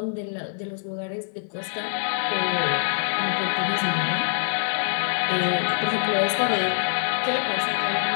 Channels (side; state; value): right; silent; 56 dB below the other